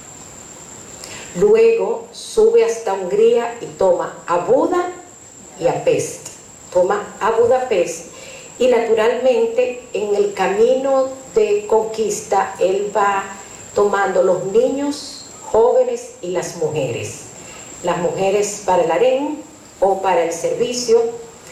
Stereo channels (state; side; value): identical; both; correlation 1.00